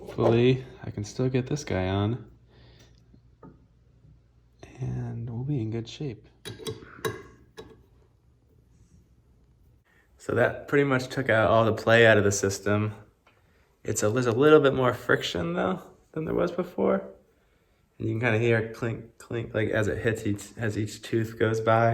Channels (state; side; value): identical; both; correlation 1.00